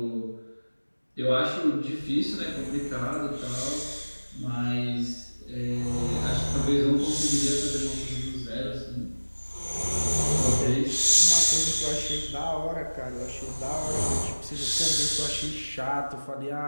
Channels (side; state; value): both; inverted; correlation -1.00